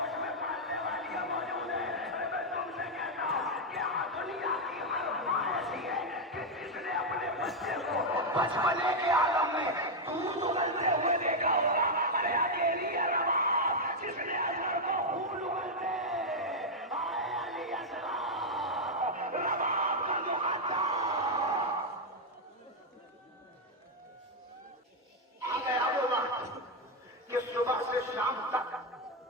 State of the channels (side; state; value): both; normal; correlation 0.01